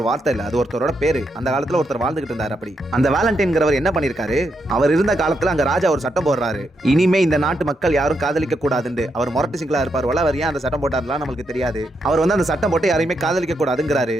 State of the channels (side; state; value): both; normal; correlation 0.81